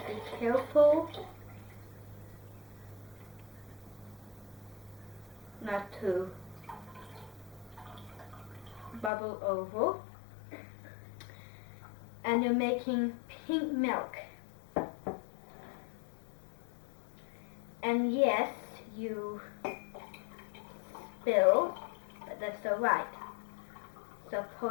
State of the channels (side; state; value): right; drops out; at 9.1 s